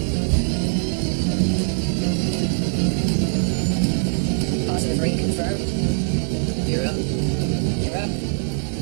Positive rate confirmed. You're up. You're up.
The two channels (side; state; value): left; silent; digital silence